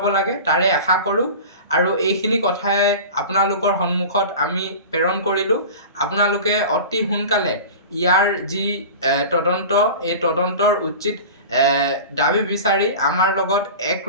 লাগে তাৰে আশা কৰোঁ। আৰু এইখিনি কথাই আপোনালোকৰ সন্মুখত আমি প্ৰেৰণ কৰিলোঁ। আপোনালোকে অতি সোনকালে ইয়াৰ যি তদন্ত এই তদন্তৰ উচিত দাবী বিচাৰি আমাৰ লগত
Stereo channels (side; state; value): both; inverted; correlation -0.34